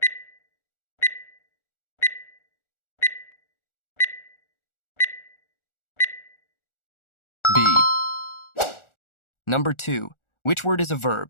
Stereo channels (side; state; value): right; late; 1.4 ms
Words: B. Number 2, which word is a